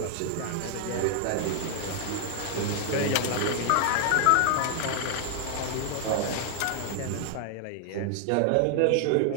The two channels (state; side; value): different; both; correlation 0.00